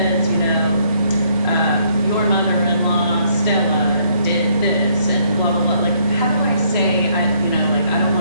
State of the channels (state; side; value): inverted; both; correlation -0.68